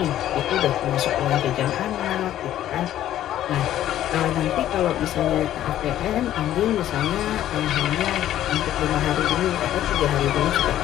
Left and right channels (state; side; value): quieter; right; 12.3 dB